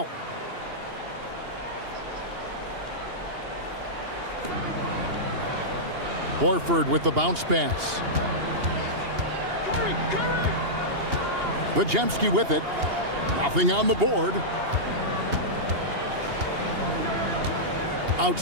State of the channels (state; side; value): late; left; 2.8 ms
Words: Horford with the bounce pass. Podziemski with it. Nothing on the board.